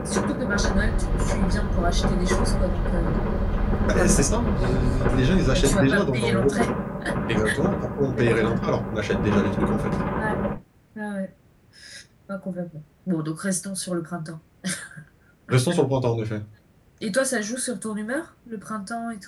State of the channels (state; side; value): identical; both; correlation 1.00